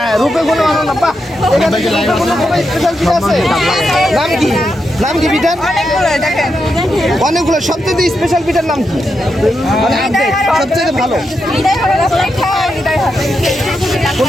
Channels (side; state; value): both; normal; correlation 0.85